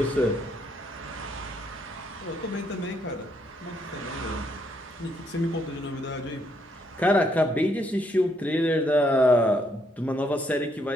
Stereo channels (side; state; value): both; normal; correlation 0.73